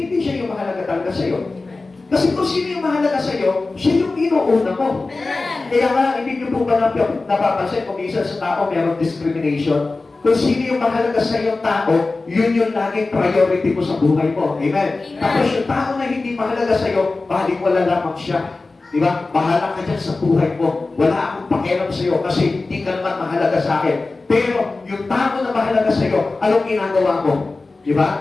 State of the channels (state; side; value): quieter; right; 3.5 dB